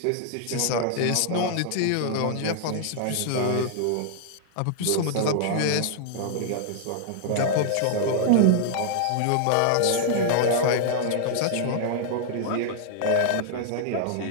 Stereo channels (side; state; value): both; different; correlation -0.01